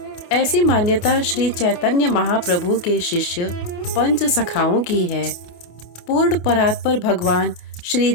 ऐसी मान्यता श्री चैतन्य महाप्रभु के शिष्य पंच सखाओं की है। पूर्ण परात्पर भगवान श्री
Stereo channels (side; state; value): right; late; 28 ms